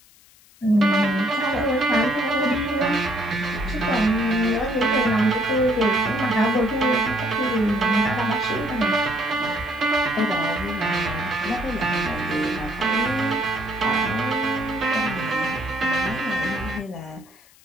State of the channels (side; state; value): left; noise; hiss, 27 dB below the sound